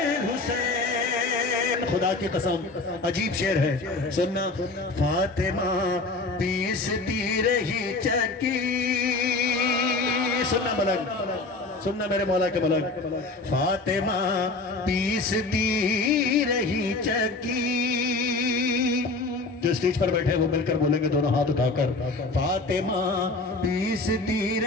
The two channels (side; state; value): right; quieter; 3.5 dB